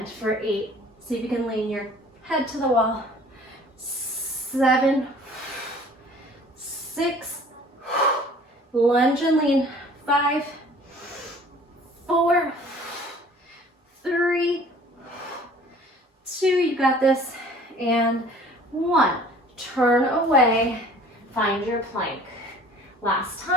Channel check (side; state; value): both; normal; correlation 0.50